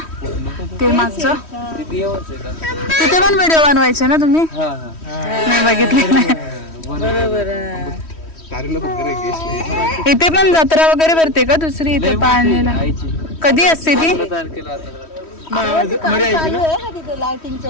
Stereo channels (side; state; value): right; late; 3.1 ms